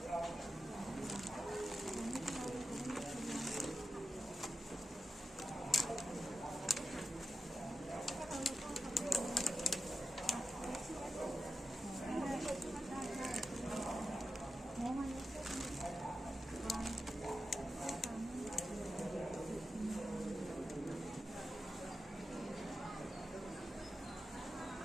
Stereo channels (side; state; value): both; normal; correlation 0.90